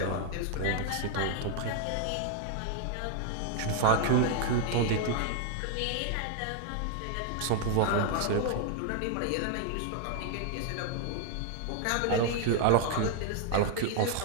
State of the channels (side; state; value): both; different; correlation 0.00